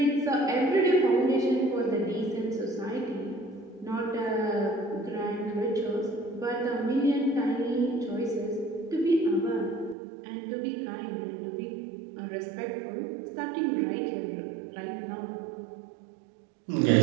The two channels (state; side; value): drops out; left; at 10.0 s